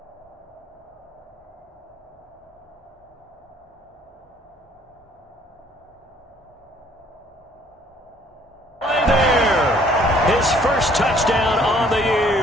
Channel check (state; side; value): normal; both; correlation 0.60